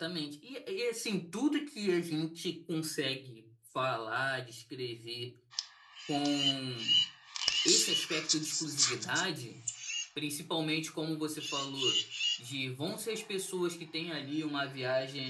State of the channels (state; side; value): identical; both; correlation 1.00